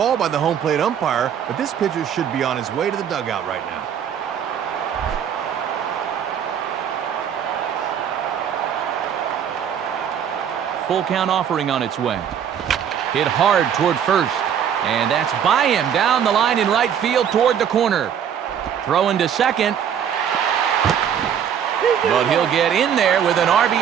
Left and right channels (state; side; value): quieter; left; 8.6 dB